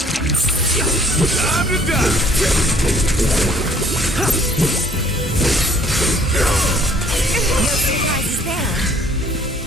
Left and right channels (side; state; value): both; normal; correlation 0.58